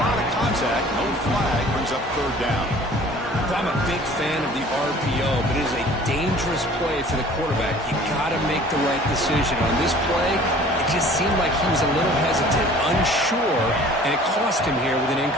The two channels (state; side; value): normal; both; correlation 0.49